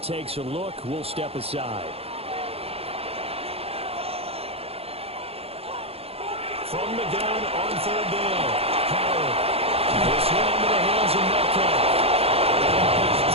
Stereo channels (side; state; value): left; late; 0.29 ms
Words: a look, we'll step aside. From the gun on 3rd down. Howard. This one into the hands of Metcalf.